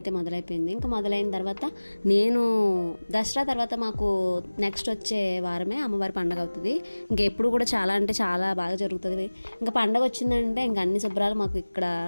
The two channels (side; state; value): both; inverted; correlation -1.00